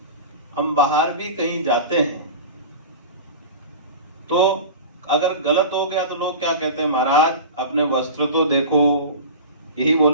हम बाहर भी कहीं जाते हैं तो अगर गलत हो गया तो लोग क्या कहते हैं, महाराज अपने वस्त्र तो देखो, यही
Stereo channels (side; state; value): both; inverted; correlation -0.32